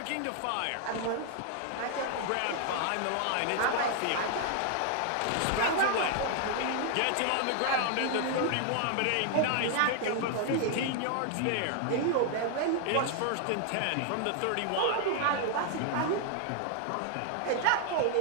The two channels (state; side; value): different; both; correlation 0.00